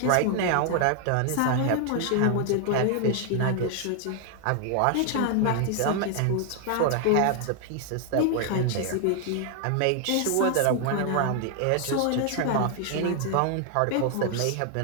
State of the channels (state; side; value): different; both; correlation 0.00